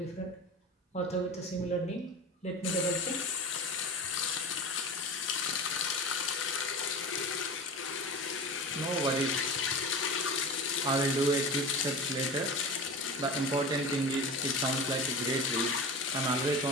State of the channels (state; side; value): normal; both; correlation 0.31